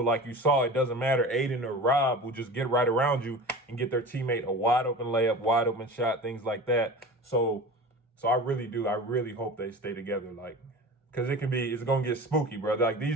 like you saw, it doesn't matter. Aden or Rob will just get right around you and get their teammate a wide open layup, wide open shot, things like that. So I really hope they stay together. Like, because it's going to get spooky, bro. Like these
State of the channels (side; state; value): both; normal; correlation 0.35